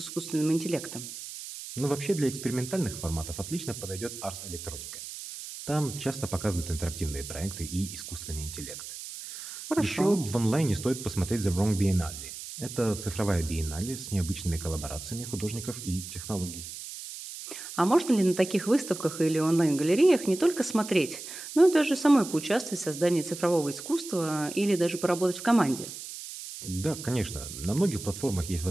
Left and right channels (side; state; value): right; noise; hiss, 10 dB below the sound